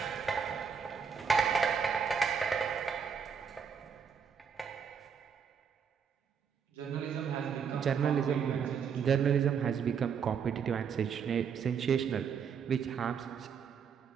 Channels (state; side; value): quieter; left; 6.8 dB